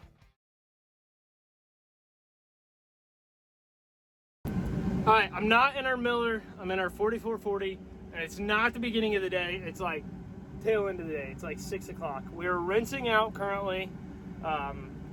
All right, I'm not in our miller. I'm in our 4440, and it's not the beginning of the day. It's like tail end of the day. It's like 6 o'clock. We're rinsing out currently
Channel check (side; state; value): both; identical; correlation 1.00